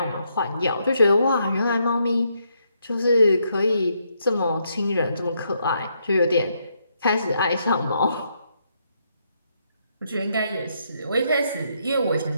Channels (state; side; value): inverted; both; correlation -0.76